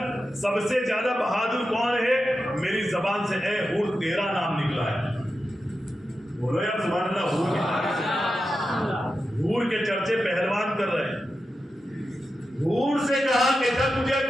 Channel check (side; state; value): both; normal; correlation 0.90